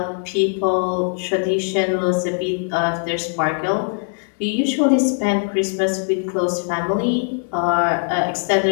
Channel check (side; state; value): right; silent; 57 dB below the other